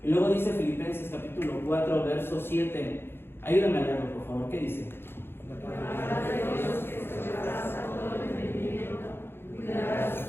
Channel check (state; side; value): late; right; 0.11 ms